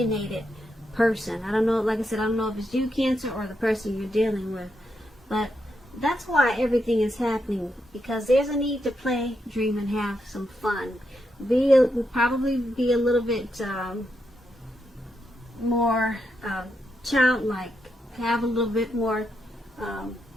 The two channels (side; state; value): both; normal; correlation 0.83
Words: person. I don't know, like I said, I don't know if it's you, Cancer, or the person you're dealing with, but that's why everything is happening, because there's a need to play, dream, and have some fun. Probably be a little bit more childlike, have a little bit more